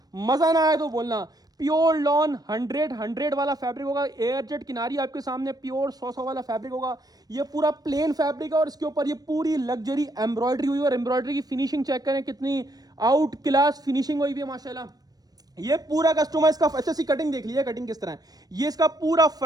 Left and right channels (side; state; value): left; late; 0.19 ms